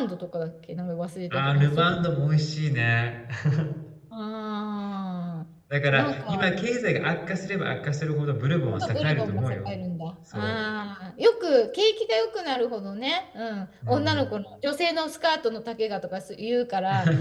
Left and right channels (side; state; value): both; identical; correlation 1.00